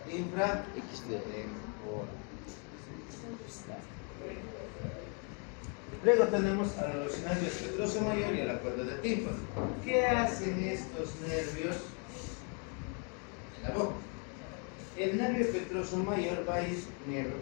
infratemporal. Luego tenemos a los nervios petroso mayor y a la cuerda de tímpano. ¿Qué hacen estos nervios en la boca? El nervio petroso mayor va a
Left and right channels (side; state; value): right; quieter; 38.6 dB